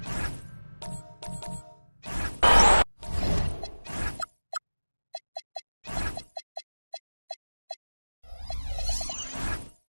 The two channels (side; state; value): both; inverted; correlation -1.00